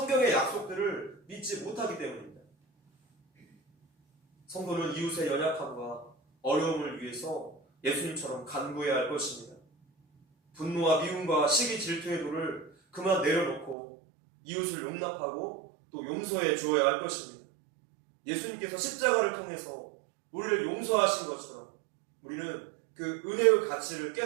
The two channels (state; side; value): drops out; left; at 13.8 s